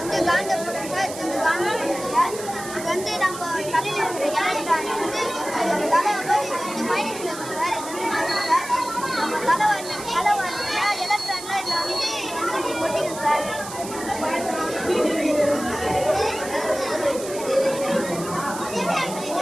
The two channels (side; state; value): right; noise; hiss, 11 dB below the sound